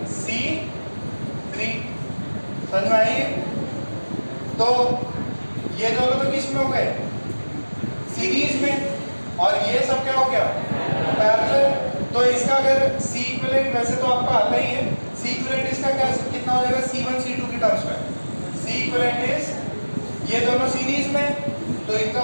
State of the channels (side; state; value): both; inverted; correlation -1.00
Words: C3। समझ में आई? तो ये दोनों तो किस में हो गए? सीरीज में। और ये सब क्या हो गया? पैरेलल। तो इसका अगर C इक्विवेलेंट, वैसे तो आपको आता ही है, C इक्विवेलेंट इसका क्या कितना हो जाएगा? C1 C2 की टर्म्स में C इक्विवेलेंट इज, ये दोनों सीरीज में तो इनका